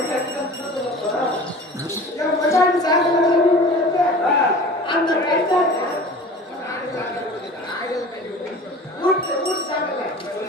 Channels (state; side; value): normal; both; correlation 0.40